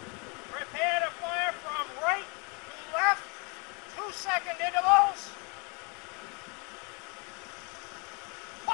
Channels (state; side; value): quieter; right; 32.5 dB